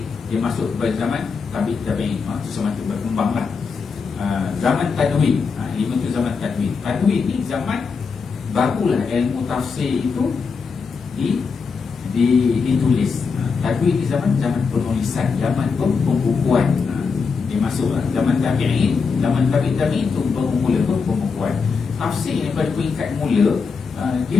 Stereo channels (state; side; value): quieter; right; 5.3 dB